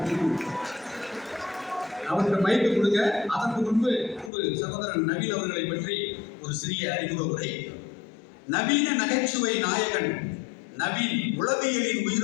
அவருக்கு மைக்கு கொடுங்க. அதற்கு முன்பு சகோதரன் நவீன் அவர்களை பற்றி ஒரு சிறிய அறிமுக உரை. நவீன நகைச்சுவை நாயகன் நவீன் உளவியலின்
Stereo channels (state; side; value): drops out; right; at 4.3 s